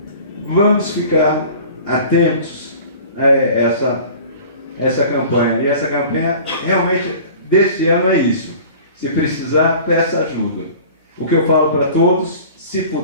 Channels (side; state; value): both; inverted; correlation -0.43